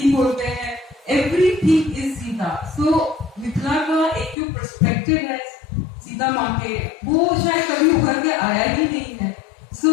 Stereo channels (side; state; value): right; drops out; at 4.4 s